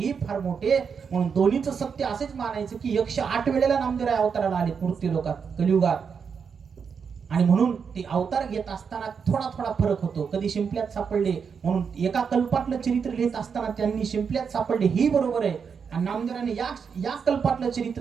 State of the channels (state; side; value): quieter; left; 6.3 dB